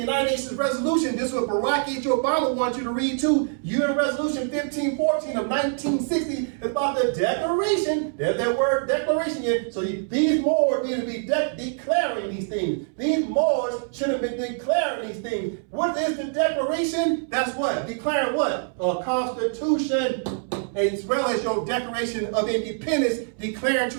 Nations resolution. This is what Barack H. Obama wants you to read too. UN Resolution 1514 of 1960 is about the declaration. There's that word declaration here. So these Moors need to be declaring these things. These Moors should have been declaring these things. What is the declaration? That's what? Declaring what? A constitution, as well as your Declaration of Independence, declaring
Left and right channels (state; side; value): silent; left; 62 dB below the other